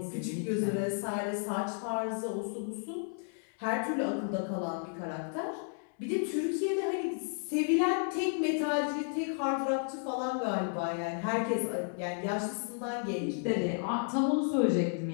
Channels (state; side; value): silent; right; 56 dB below the other